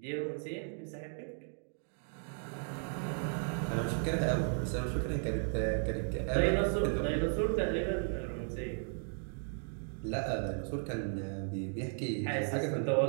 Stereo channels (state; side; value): silent; left; 54 dB below the other